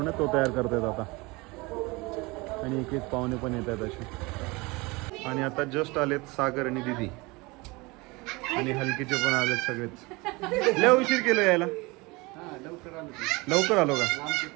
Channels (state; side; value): quieter; left; 24.6 dB